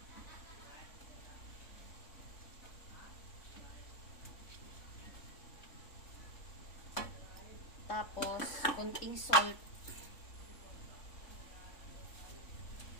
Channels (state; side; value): late; right; 3.5 ms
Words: Tapos, kunting salt.